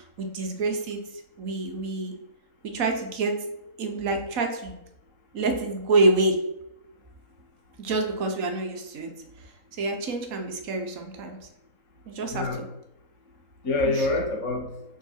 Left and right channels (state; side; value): late; left; 3.8 ms